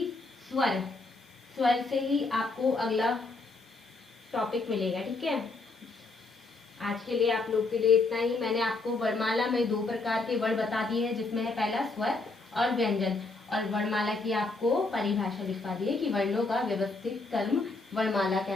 स्वर। स्वर से ही आपको अगला टॉपिक मिलेगा, ठीक है। आज के लिए आप लोग के लिए इतना ही। मैंने आपको वर्णमाला में 2 प्रकार के वर्ण बता दिए हैं, जिसमें है पहला स्वर और व्यंजन। और वर्णमाला की आपको परिभाषा लिखवा दी है कि वर्णों का व्यवस्थित क्रम वर्णमाला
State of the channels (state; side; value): quieter; right; 3.5 dB